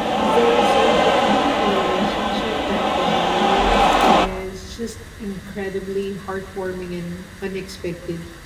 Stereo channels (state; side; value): identical; both; correlation 1.00